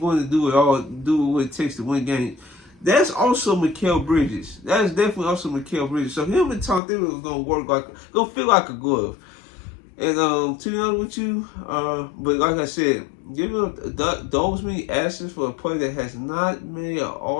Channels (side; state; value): right; drops out; at 6.8 s